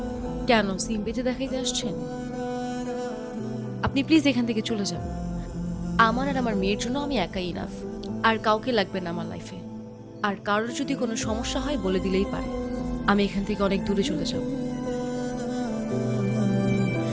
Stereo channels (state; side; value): identical; both; correlation 1.00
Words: কেন সিম্পিতে দেখাইতে আসছেন? আপনি প্লিজ এখান থেকে চলে যান। আমার আর আমার মেয়ের জন্য আমি একাই ইনাফ, আর কাউকে লাগবে না আমার লাইফে। আর কারোর যদি কোনো সমস্যা হয় বলে দিলেই পারে। আমি এখান থেকে অনেক দূরে চলে যাব।